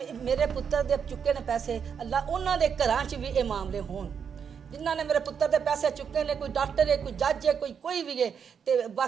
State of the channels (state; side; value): quieter; left; 7.1 dB